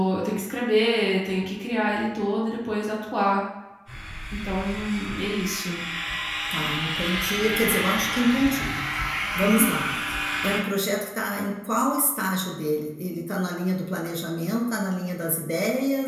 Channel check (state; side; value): identical; both; correlation 1.00